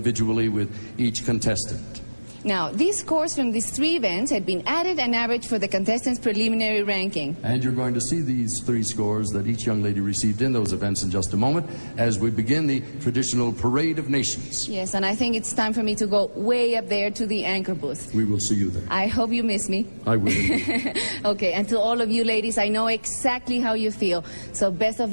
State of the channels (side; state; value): both; inverted; correlation -1.00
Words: with each contestant. Now, these scores from these 3 events had been added and averaged for the contestants' preliminary ranking. And you're going to see these 3 scores that each young lady received in those events in just a moment as we begin the traditional Parade of Nations. Yes, and I think it's time for me to go way up there to the anchor booth. We will see you there. I hope you miss me. I will. Okay, and to all of you ladies, I know exactly how you feel. So best of